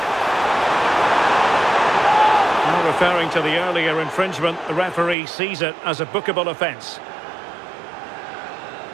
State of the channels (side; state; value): left; drops out; at 5.2 s